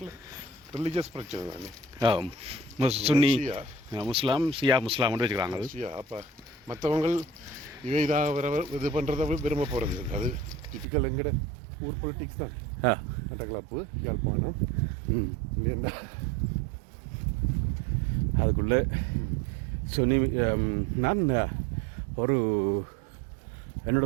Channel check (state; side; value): drops out; left; at 10.9 s